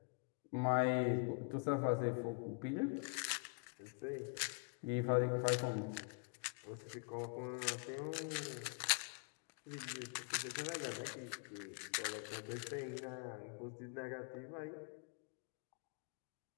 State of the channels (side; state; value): right; quieter; 35.8 dB